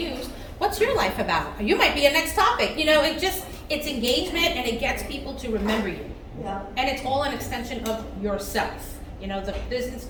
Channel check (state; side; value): identical; both; correlation 1.00